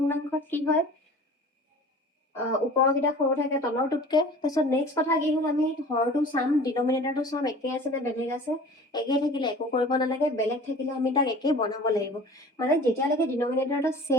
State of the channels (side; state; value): both; normal; correlation 0.43